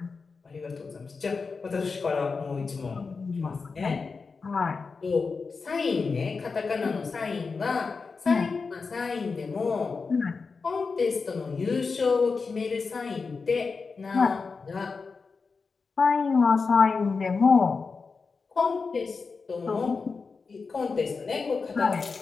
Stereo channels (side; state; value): right; quieter; 4.7 dB